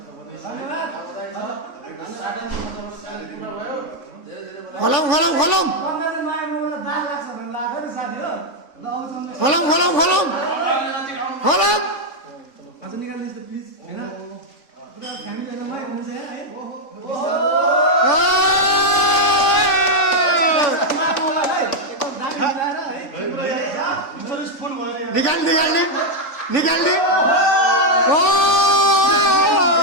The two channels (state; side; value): late; right; 3.5 ms